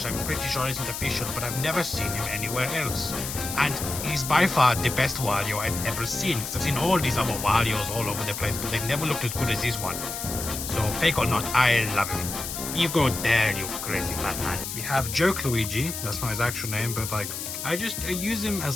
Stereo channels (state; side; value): noise; left; hiss, 6 dB below the sound